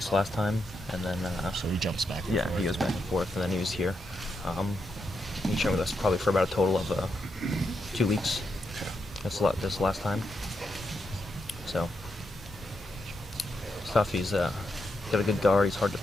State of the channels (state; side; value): normal; both; correlation 0.83